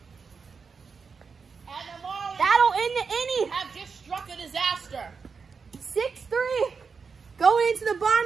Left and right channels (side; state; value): left; quieter; 5.3 dB